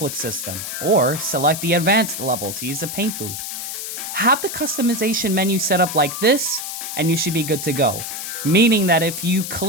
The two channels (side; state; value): left; noise; hiss, 6 dB below the sound